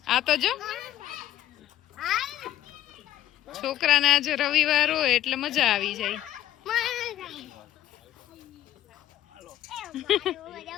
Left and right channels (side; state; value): right; quieter; 12.9 dB